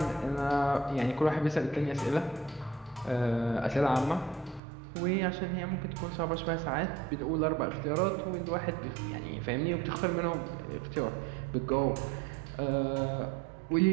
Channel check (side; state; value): left; drops out; at 4.6 s